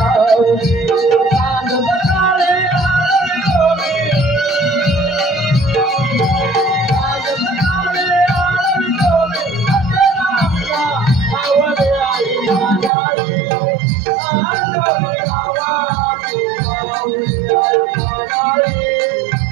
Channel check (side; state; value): left; drops out; at 12.9 s